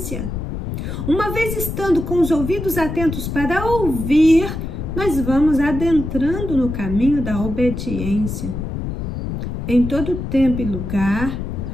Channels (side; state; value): left; noise; rumble, 5 dB below the sound